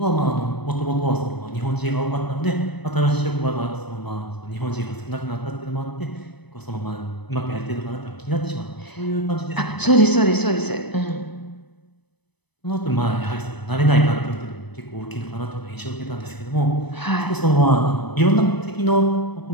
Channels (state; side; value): late; right; 0.99 ms